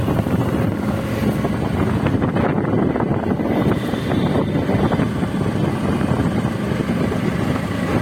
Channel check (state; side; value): identical; both; correlation 1.00